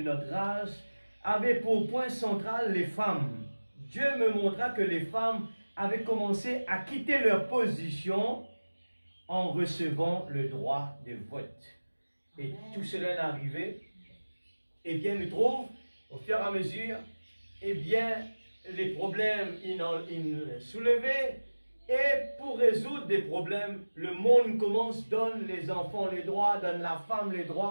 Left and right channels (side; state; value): both; inverted; correlation -1.00